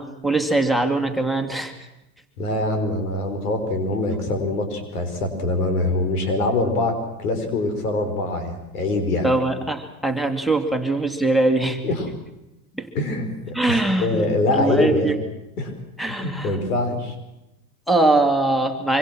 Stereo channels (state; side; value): normal; both; correlation 0.49